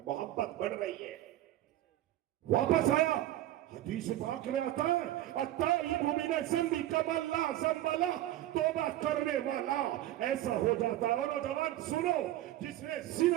محبت بڑھ رہی ہے. واپس آیا. حدیث پاک میں آتا ہے التائب من الذنب کمن لا ذنب لہ, توبہ کرنے والا ایسا ہو جاتا ہے. اور نوجوان سنو, جس نے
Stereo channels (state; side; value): quieter; left; 14.2 dB